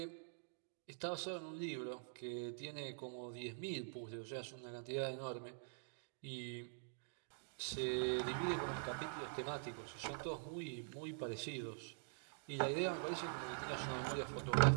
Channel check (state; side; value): silent; left; digital silence